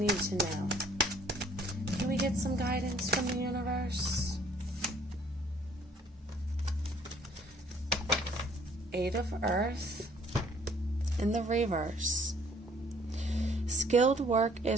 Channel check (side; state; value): both; normal; correlation 0.59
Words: to know? Can we get some guidance from the universe? 8 of Earth in the reverse. Skilled work